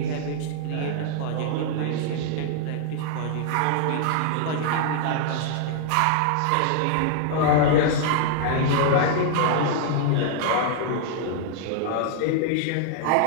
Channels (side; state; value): both; different; correlation 0.00